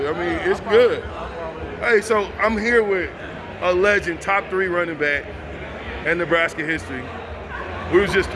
I mean, it's good. Hey, so I'm here with a legend, top 3 running back in Nebraska history. We was just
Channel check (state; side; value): identical; both; correlation 1.00